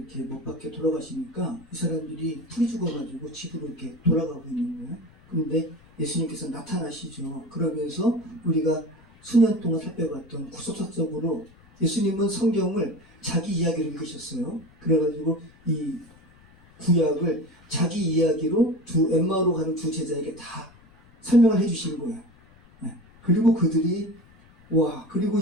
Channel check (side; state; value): left; noise; rumble, 27 dB below the sound